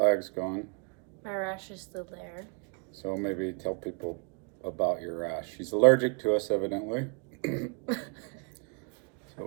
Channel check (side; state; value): left; quieter; 37.3 dB